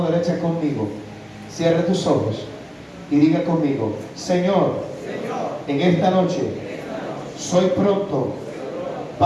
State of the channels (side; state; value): both; identical; correlation 1.00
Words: derecha conmigo, cierre tus ojos y diga conmigo: Señor, en esta noche soy pronto